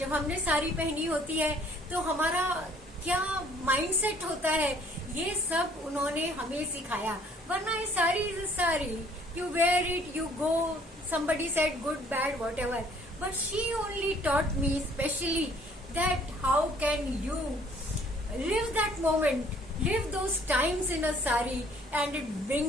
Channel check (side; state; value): both; normal; correlation 0.59